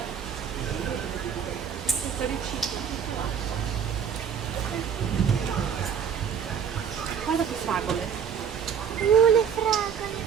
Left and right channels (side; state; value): left; quieter; 7.7 dB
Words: Senza riciclo. Guarda che fragole. Le fragole